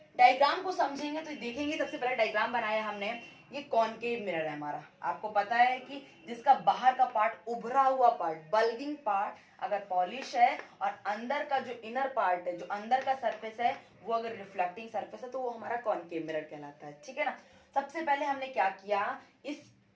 डायग्राम को समझेंगे तो देखेंगे, सबसे पहले डायग्राम बनाया हमने। ये कॉनकेव मिरर है हमारा। आपको पता है कि जिसका बाहर का पार्ट, उभरा हुआ पार्ट, बल्गिंग पार्ट अगर पॉलिश है और अंदर का जो इनर पार्ट है, जो अंदर का सरफेस है वो अगर रिफ्लेक्टिंग सरफेस है तो वो हमारा कॉनकेव मिरर कहलाता है, ठीक है ना। सबसे पहले हमने क्या किया,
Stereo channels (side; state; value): both; identical; correlation 1.00